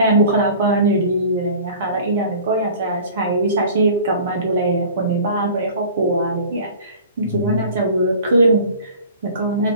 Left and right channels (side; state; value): both; inverted; correlation -0.43